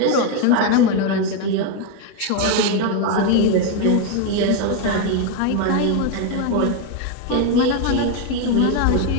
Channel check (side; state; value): both; different; correlation 0.02